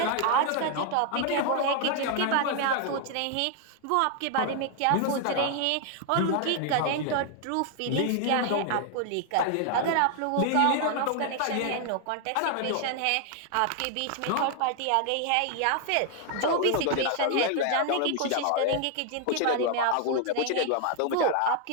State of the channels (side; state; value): both; different; correlation 0.00